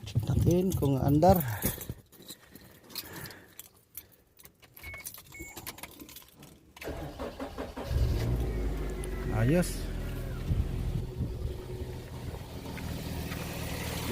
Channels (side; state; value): both; identical; correlation 1.00